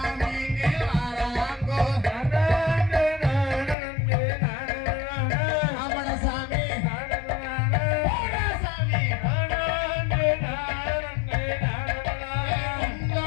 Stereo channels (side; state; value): right; drops out; at 3.8 s